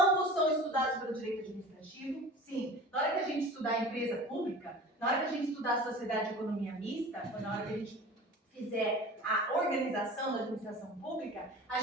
são estudados pelo direito administrativo. Sim, na hora que a gente estudar a empresa pública, na hora que a gente estudar a sociedade de economia mista, ou na hora que a gente fizer a organização da administração pública, a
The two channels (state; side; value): normal; both; correlation 0.38